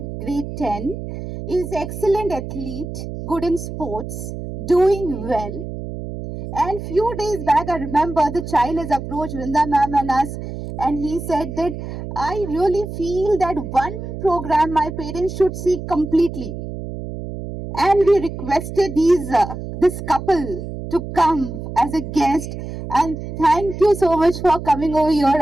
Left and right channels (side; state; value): right; noise; hum, 8 dB below the sound